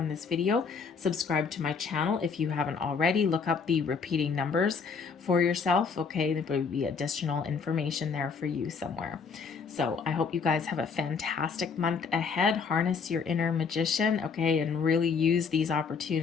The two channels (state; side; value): quieter; right; 5.5 dB